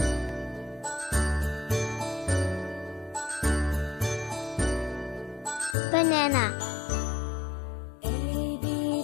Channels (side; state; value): right; drops out; at 5.8 s